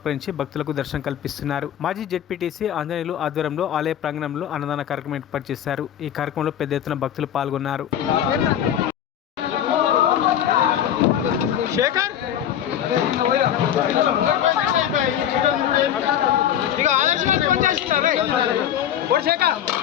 భక్తులకు దర్శనం కల్పిస్తున్నారు. మాజీ జెడ్పీటీసీ ఆంజనేయులు ఆధ్వర్యంలో ఆలయ ప్రాంగణంలో అన్నదాన కార్యక్రమం ఏర్పాటు చేశారు. ఈ కార్యక్రమంలో పెద్ద ఎత్తున భక్తులు పాల్గొన్నారు.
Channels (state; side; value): quieter; right; 10.2 dB